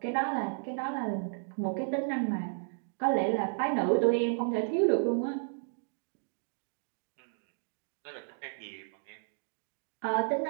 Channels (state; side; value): silent; left; digital silence